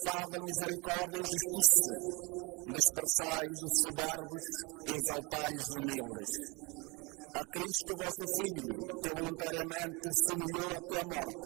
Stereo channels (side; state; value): left; quieter; 27.7 dB